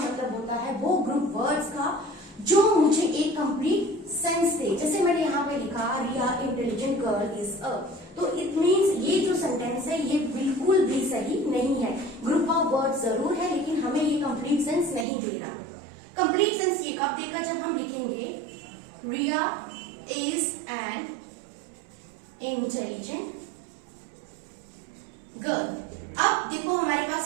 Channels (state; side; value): drops out; left; at 15.1 s